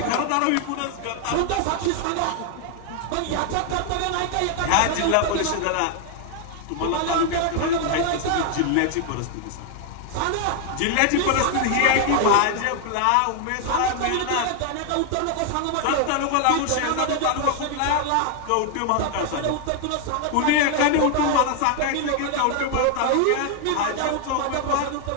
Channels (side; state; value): both; different; correlation 0.00